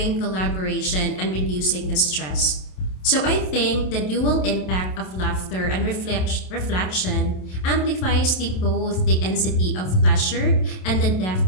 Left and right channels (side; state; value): right; late; 27 ms